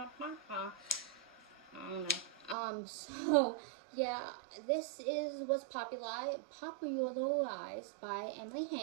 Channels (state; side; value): drops out; left; at 2.6 s